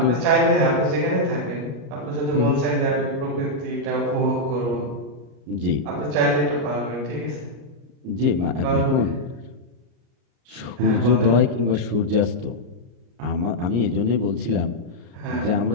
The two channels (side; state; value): left; late; 33 ms